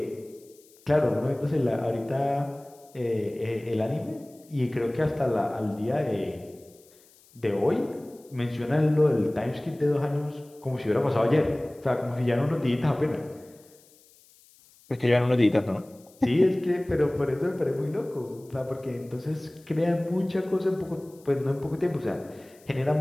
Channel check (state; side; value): noise; left; hiss, 28 dB below the sound